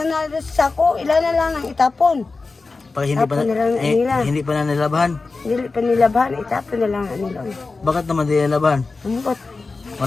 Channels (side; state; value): right; quieter; 3.9 dB